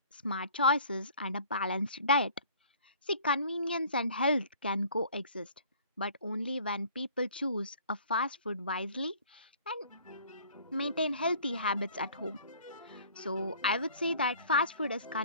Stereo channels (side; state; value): both; inverted; correlation -0.52